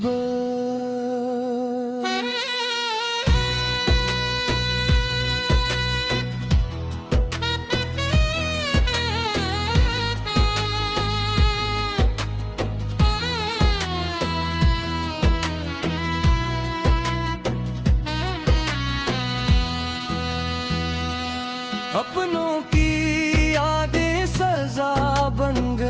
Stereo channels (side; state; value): both; identical; correlation 1.00